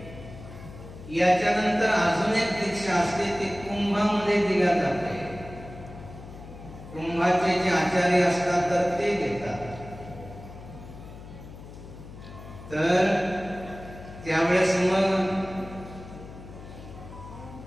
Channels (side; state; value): left; noise; hum, 15 dB below the sound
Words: याच्यानंतर अजून एक दीक्षा असते ती कुंभामध्ये दिल्या जाते. कुंभाचे जे आचार्य असतात तर ते घेतात. तर त्यावेळेस मग